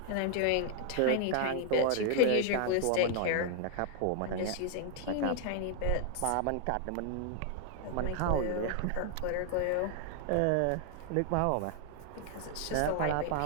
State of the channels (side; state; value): both; different; correlation 0.00